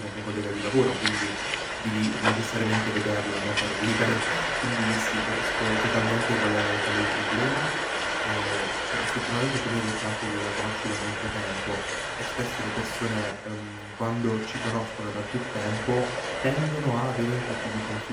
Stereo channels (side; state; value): both; identical; correlation 1.00